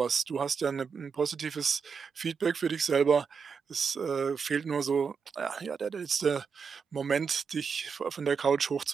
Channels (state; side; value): quieter; left; 5.9 dB